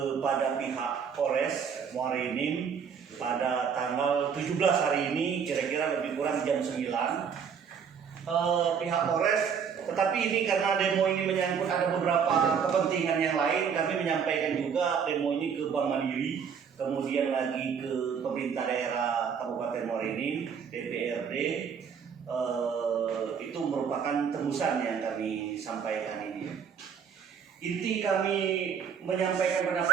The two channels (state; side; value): quieter; left; 6.9 dB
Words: pihak Polres Muara Enim pada tanggal 17 hari ini, kira-kira lebih kurang jam 9. Pihak Polres, tetapi ini karena demo ini menyangkut ada beberapa kepentingan yang lain, kami menyampaikan juga demo ini ke Bank Mandiri, kemudian lagi ke pemerintah daerah Kabupaten Muara Enim, DPRD. Itu merupakan tembusan yang kami sampaikan ini. Inti kami menyampaikan